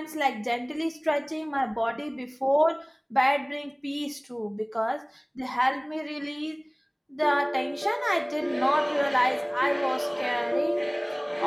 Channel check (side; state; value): both; identical; correlation 1.00